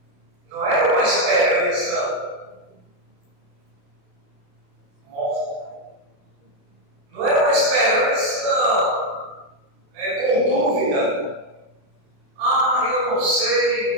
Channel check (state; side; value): late; left; 28 ms